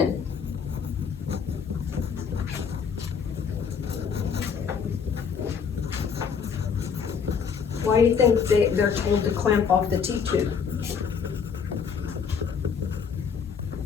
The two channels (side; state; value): right; quieter; 6.4 dB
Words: Why do you think they're told to clamp off the T-tube?